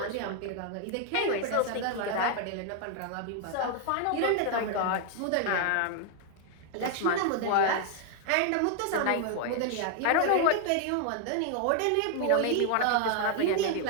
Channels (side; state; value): both; different; correlation 0.00